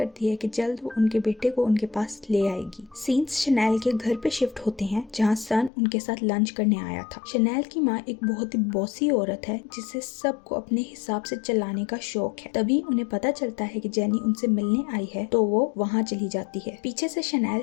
है कि जल्द वो उनके बेटे को उनके पास ले आएगी। सीन्स शनेल के घर पे शिफ्ट होते हैं जहाँ सन उनके साथ लंच करने आया था। शनेल की माँ एक बहुत ही बॉसी औरत है जिसे सबको अपने हिसाब से चलाने का शौक है। तभी उन्हें पता चलता है कि जेनी उनसे मिलने आई है तो वो वहाँ चली जाती है। पीछे से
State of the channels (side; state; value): right; drops out; at 5.7 s